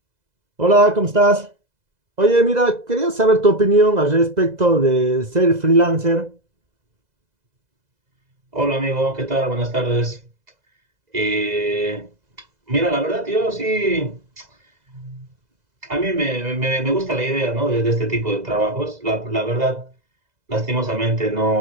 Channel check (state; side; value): late; left; 2.0 ms